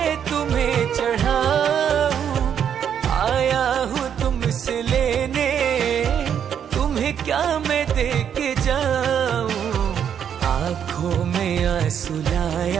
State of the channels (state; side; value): quieter; left; 8.5 dB